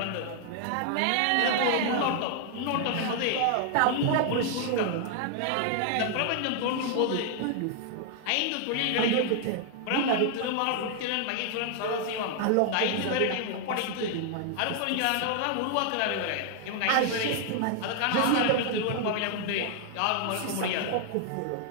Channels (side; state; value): both; different; correlation 0.00